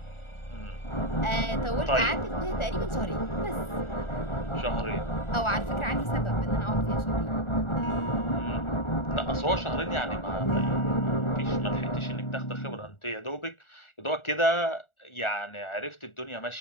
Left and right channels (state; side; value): late; right; 1.4 ms